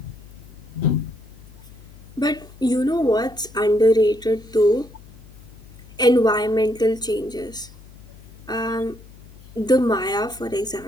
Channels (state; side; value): noise; left; hum, 20 dB below the sound